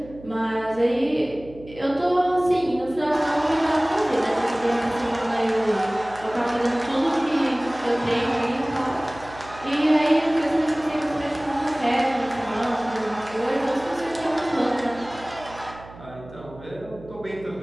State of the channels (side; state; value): right; noise; hum, 18 dB below the sound